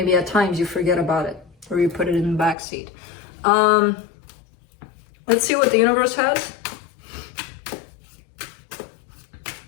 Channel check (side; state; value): right; drops out; at 2.6 s